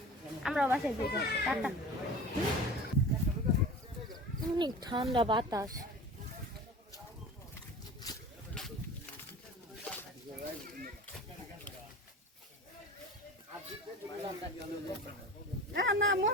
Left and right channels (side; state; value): both; normal; correlation 0.37